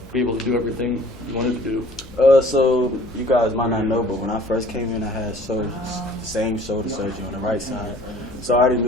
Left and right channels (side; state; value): both; normal; correlation 0.51